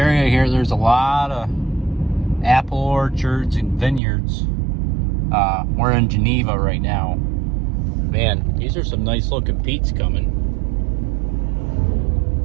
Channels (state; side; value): drops out; left; at 4.0 s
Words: here, there's a lot of apple orchards and vineyards. We're in Geneva right now. Man, these are some nice looking peats coming.